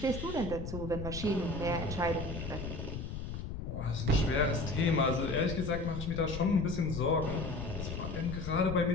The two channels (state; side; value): noise; left; rumble, 6 dB below the sound